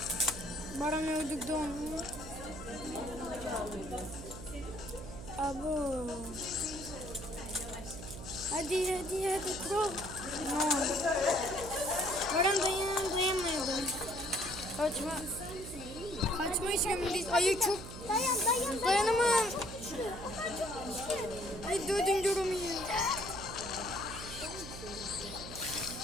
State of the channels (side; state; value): right; noise; hum, 11 dB below the sound